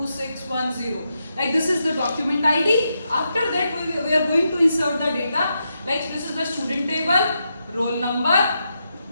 Like this is the document ID. After that, we are going to insert the data. Like this is the student table, roll number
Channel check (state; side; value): inverted; both; correlation -0.84